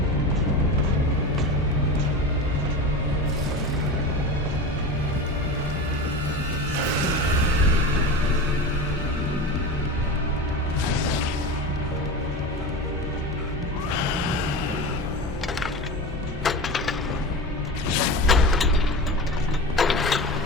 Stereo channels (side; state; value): both; normal; correlation 0.27